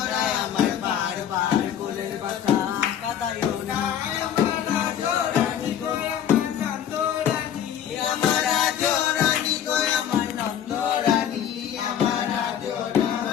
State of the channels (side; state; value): right; quieter; 9.7 dB